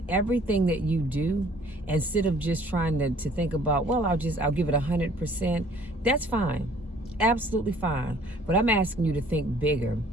everything that you do, instead of just trying to think about, well, I'll give it 100%. That's fine. Absolutely fine. But I'm asking you to think bigger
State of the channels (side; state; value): both; normal; correlation 0.56